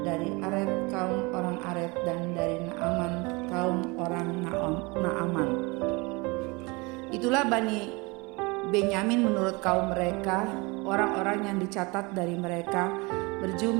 dari Aret kaum orang Aret, dan dari Naaman kaum orang Naaman. Itulah Bani Benyamin menurut kaum mereka. Orang-orang yang dicatat dari mereka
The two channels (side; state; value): left; quieter; 26.6 dB